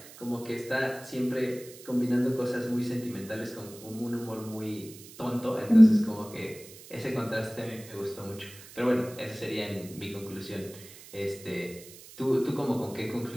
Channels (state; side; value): noise; right; hiss, 18 dB below the sound